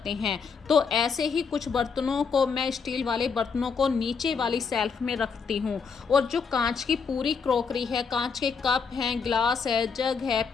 हैं। तो ऐसे ही कुछ बर्तनों को मैं स्टील वाले बर्तनों को नीचे वाली शेल्फ में रखती हूँ। और जो कांच की पूरी क्रॉकरी है, कांच के कप हैं, ग्लास है, जग है,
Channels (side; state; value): right; quieter; 5.6 dB